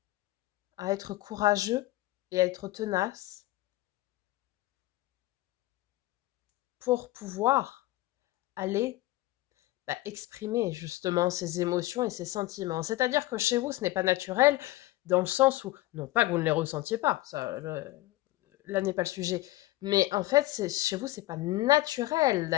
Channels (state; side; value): quieter; right; 17.7 dB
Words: à être courageux et à être tenace pour pouvoir aller exprimer justement ses émotions et ses sentiments. C'est-à-dire que chez vous, ce n'est pas naturel, dans le sens où, non pas que vous ne les ressentiez pas, ça, là n'est pas le sujet, mais en fait, chez vous, c'est pas naturel